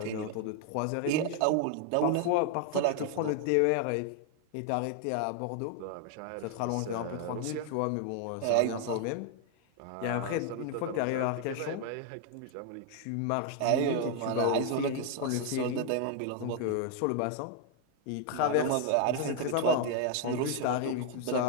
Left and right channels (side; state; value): both; different; correlation 0.00